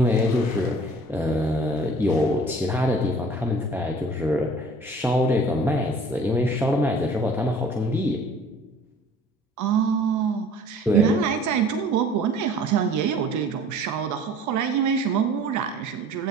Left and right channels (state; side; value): normal; both; correlation 0.49